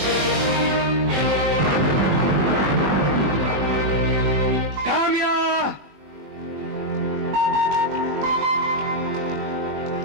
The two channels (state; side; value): late; left; 21 ms